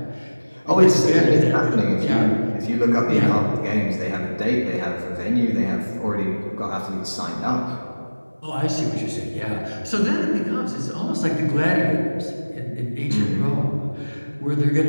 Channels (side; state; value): both; inverted; correlation -1.00